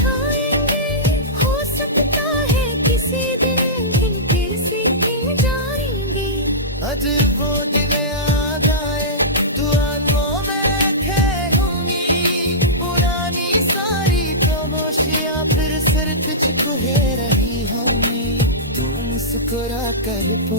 हो सकता है किसी दिन फिर से जाएंगे। आज वो दिन आ जाए, दुआओं में खेलूंगी, पुरानी सारी खामोशियां फिर सिर तुझको ले रही होंगी। तू मुस्कुरा कर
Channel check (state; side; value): normal; both; correlation -0.17